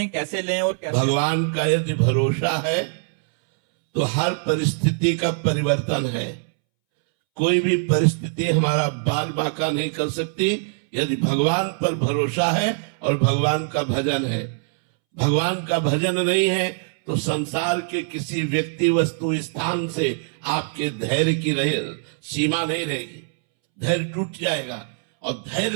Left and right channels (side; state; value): left; silent; 64 dB below the other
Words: कैसे लें और कैसे? भगवान का यदि भरोसा है तो हर परिस्थिति का परिवर्तन है। कोई भी परिस्थिति हमारा बाल बांका नहीं कर सकती यदि भगवान पर भरोसा है और भगवान का भजन है। भगवान का भजन नहीं है तो संसार के किसी व्यक्ति वस्तु स्थान से आपके धैर्य की सीमा नहीं रहेगी। धैर्य टूट जाएगा और